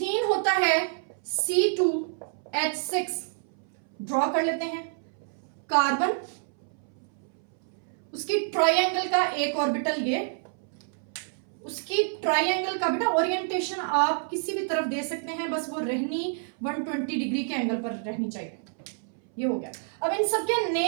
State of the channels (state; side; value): silent; left; 59 dB below the other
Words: होता है C2H6, ड्रॉ कर लेते हैं। कार्बन, उसकी ट्रायंगल का एक ऑर्बिटल ये, उसकी ट्रायंगल का बेटा ओरिएंटेशन आप किसी भी तरफ दे सकते हैं, बस वो रहनी 120 डिग्री के एंगल पर रहनी चाहिए। ये हो गया। अब इन सब के